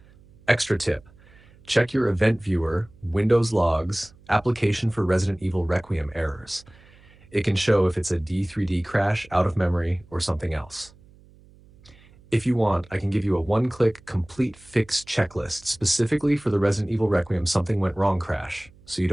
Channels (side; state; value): right; noise; hum, 26 dB below the sound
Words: Extra tip: check your event viewer, Windows logs, application for Resident Evil Requiem errors. It can show if it's a D3D crash, out of memory, or something else. If you want, I can give you a one-click complete fix checklist specifically for the Resident Evil Requiem something went wrong crash, so you